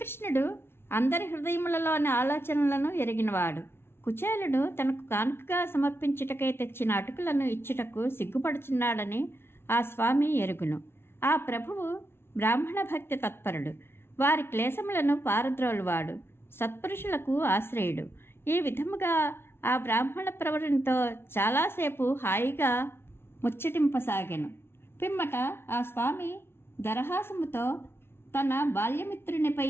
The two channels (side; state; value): right; late; 0.12 ms